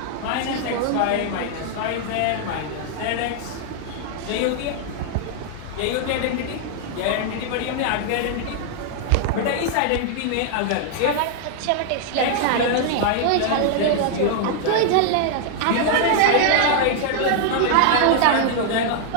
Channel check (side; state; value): both; different; correlation 0.00